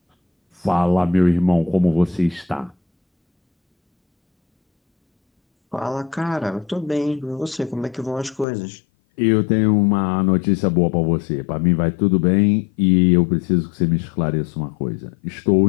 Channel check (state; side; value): drops out; right; at 8.5 s